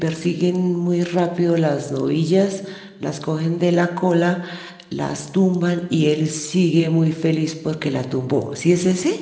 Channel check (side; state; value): both; identical; correlation 1.00